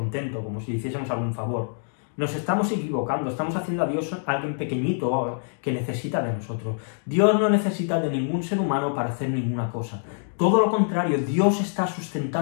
como si hiciésemos algún favor, nos estamos equivocando, estamos haciendo a Dios alguien pequeñito que necesita de nosotros. Dios no necesita de ningún ser humano para hacer ninguna cosa. Todo lo contrario, Dios está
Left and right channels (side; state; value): right; silent; digital silence